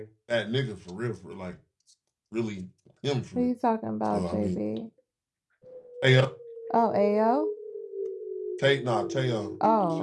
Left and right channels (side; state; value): both; identical; correlation 1.00